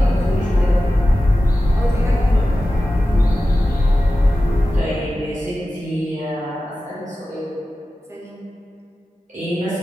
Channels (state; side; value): normal; both; correlation 0.94